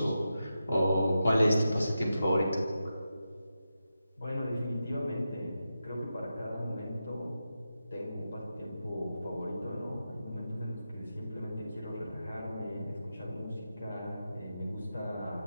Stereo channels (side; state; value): both; inverted; correlation -0.89